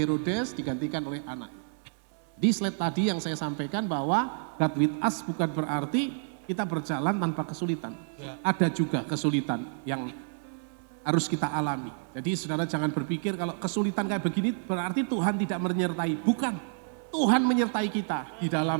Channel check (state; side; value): silent; left; 58 dB below the other